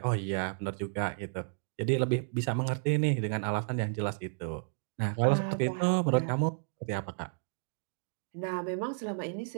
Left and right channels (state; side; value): silent; left; digital silence